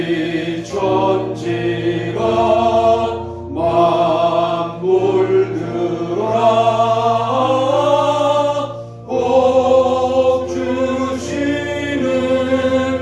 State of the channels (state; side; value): identical; both; correlation 1.00